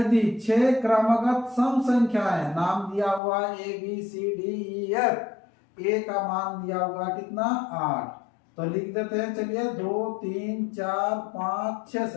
6 क्रमगत सम संख्याएं, नाम दिया हुआ A B C D E F, A का मान दिया हुआ कितना 8, तो लिख देते हैं। चलिए 2 3 4 5 6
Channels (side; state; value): right; drops out; at 3.2 s